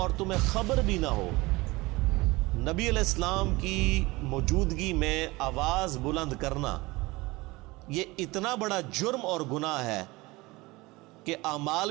تمہیں خبر بھی نہ ہو. نبی علیہ السلام کی موجودگی میں آواز بلند کرنا یہ اتنا بڑا جرم اور گناہ ہے کہ اعمال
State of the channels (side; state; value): left; quieter; 22.0 dB